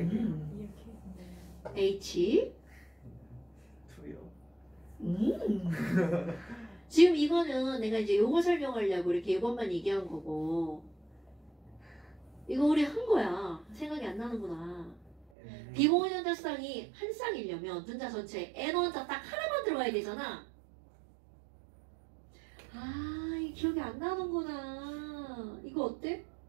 H. 투요. 지금 이거는 내가 이제 요거 설명하려고 이렇게 이것만 얘기한 거고 이거 우리 한 거야. 생각이 안 나는구나. 비공유전자쌍이 한 쌍이려면 분자 전체에 N 원자 딱 하나만 들어가야 되잖아. 아, 이 기억이 안 나는구나. 이거 어때?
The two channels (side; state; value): left; drops out; at 15.2 s